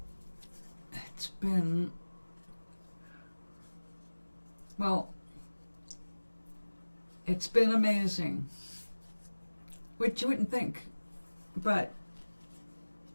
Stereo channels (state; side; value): inverted; both; correlation -1.00